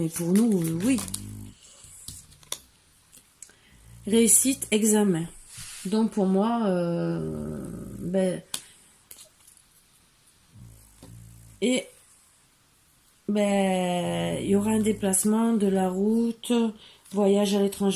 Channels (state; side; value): identical; both; correlation 1.00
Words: pour nous, oui. Réussite, examen. Donc pour moi, il y aura un déplacement de la route, voyage à